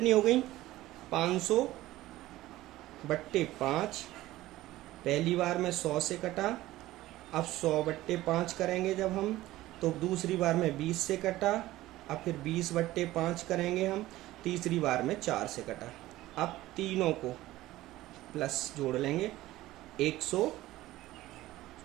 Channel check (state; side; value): quieter; left; 16.3 dB